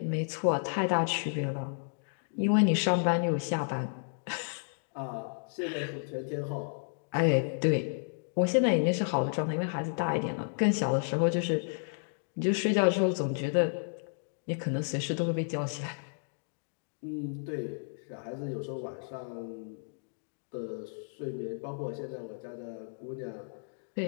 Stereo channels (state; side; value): silent; right; digital silence